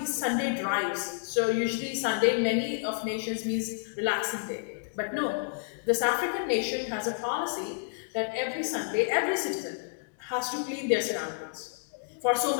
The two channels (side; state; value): right; silent; digital silence